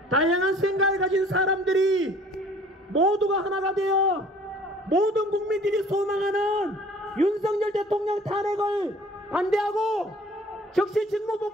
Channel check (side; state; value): both; normal; correlation 0.52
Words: 다양한 생각을 가진 사람들이 모두가 하나가 되어 모든 국민들이 소망하는 윤석열 대통령 탄핵을 반대하고 즉시 직무